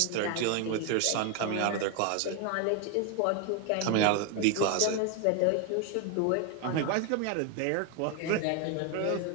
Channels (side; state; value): both; different; correlation 0.01